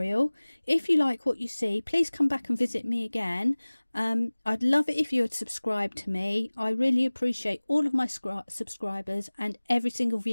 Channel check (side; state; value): both; inverted; correlation -1.00